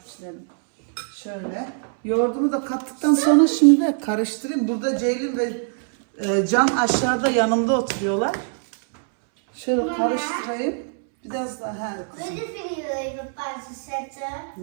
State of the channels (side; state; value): left; silent; 63 dB below the other